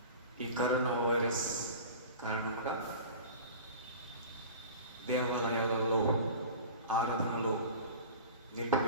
ఈ కరోనా వైరస్ కారణంగా దేవాలయాలలో ఆరాధనలో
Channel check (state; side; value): inverted; both; correlation -0.37